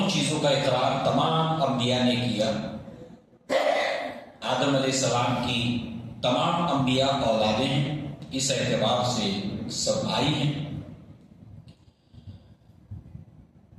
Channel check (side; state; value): both; identical; correlation 1.00